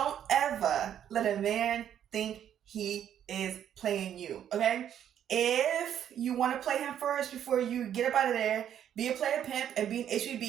ever let a man think he is playing you, okay? If you want to play him first before you get up out of there, be a player pimp and be an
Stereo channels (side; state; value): left; quieter; 9.9 dB